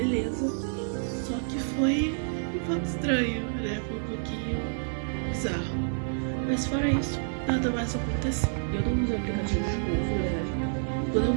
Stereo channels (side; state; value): left; silent; digital silence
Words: Só que foi um pouco estranho, né? Foi um pouquinho bizarro. Mas fora isso, nada mais aconteceu. Eu não usei o aplicativo de novo, na verdade. Quando